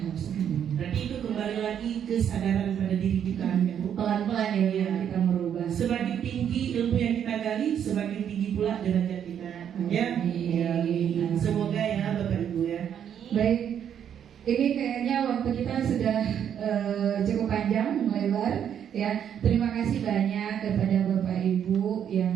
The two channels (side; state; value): left; quieter; 8.9 dB